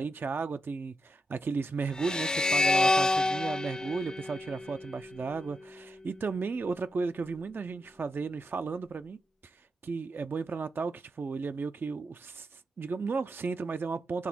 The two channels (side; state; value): both; normal; correlation 0.86